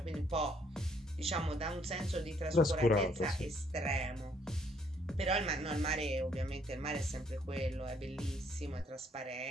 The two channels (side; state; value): both; normal; correlation 0.67